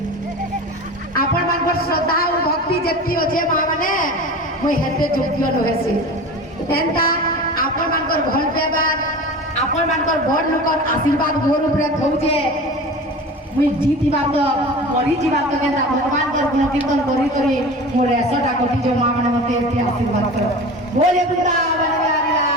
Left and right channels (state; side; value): normal; both; correlation 0.34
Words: আপন মানকর শ্রদ্ধা ও ভক্তি যেতি আছে মা মানে মুই হেতে যোগ্য হয়েছে এন্তা আপন মানকর ভাল ব্যবহার আপন মানকর বড় লোকর আশীর্বাদ মোর উপরে থৌছে মুই জিতিবা তো মরি ଯିବା ତ କେନ୍ତା ଭଗବାନଙ୍କର ଗୁଣ କୀର୍ତ୍ତନ କରି କରି ମୋର 100ଟା କୋଟି ଯୋଉ ମା ମାନେ ମତେ ଏତେ ଆଶୀର୍ବାଦ କର ବୋଲେ ବୃନ୍ଦାବନ ବିହାରୀ